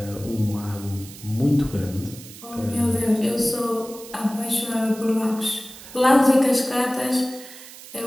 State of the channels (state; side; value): noise; right; hiss, 16 dB below the sound